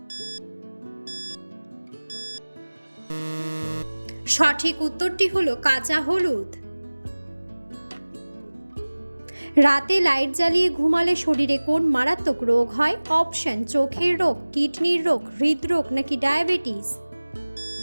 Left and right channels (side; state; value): both; inverted; correlation -1.00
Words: সঠিক উত্তরটি হলো কাঁচা হলুদ। রাতে লাইট জ্বালিয়ে ঘুমালে শরীরে কোন মারাত্মক রোগ হয়? অপশন: চোখের রোগ, কিডনির রোগ, হৃদরোগ নাকি ডায়াবেটিস?